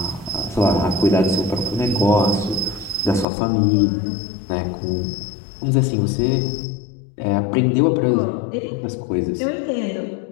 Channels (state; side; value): drops out; right; at 3.2 s